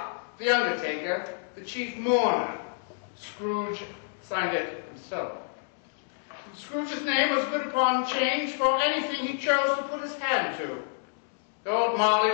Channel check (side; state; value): right; silent; digital silence